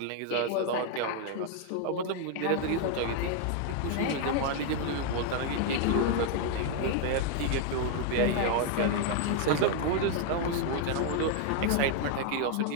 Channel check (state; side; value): different; both; correlation 0.00